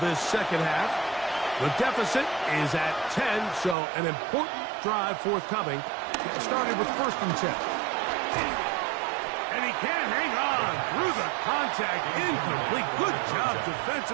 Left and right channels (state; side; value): drops out; left; at 3.8 s